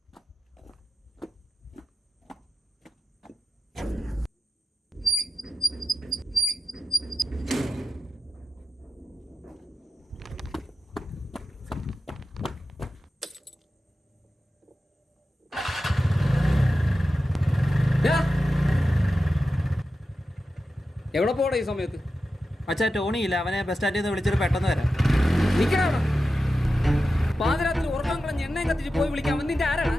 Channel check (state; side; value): normal; both; correlation 0.92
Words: എവിടെ പോടാ ഈ സമയത്ത്? അച്ഛാ, ടോണി ഇല്ല, അവനെ ബസ് സ്റ്റാൻഡിൽ നിന്ന് വിളിച്ചിട്ട് പെട്ടെന്ന് വരാം. നിൽക്കണ പാതിരാത്രി ഉറക്കം കളഞ്ഞ് എണ്ണയും കത്തിച്ച് പോയി വിളിക്കാൻ നിന്റെ ആരാണ്?